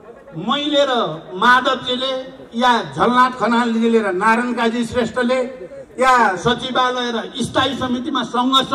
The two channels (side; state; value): both; identical; correlation 1.00